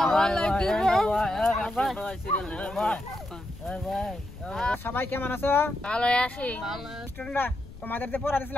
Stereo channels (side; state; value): left; noise; rumble, 15 dB below the sound